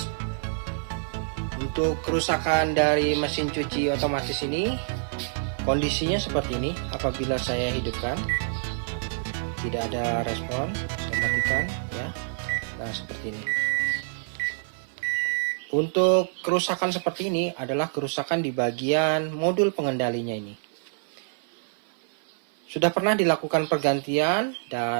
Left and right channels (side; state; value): left; silent; 60 dB below the other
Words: Untuk kerusakan dari mesin cuci otomatis ini, kondisinya seperti ini. Apabila saya hidupkan, tidak ada respon, saya matikan ya. Nah, seperti ini. Untuk kerusakan seperti ini adalah kerusakan di bagian modul pengendalinya ini. Sudah pernah dilakukan pergantian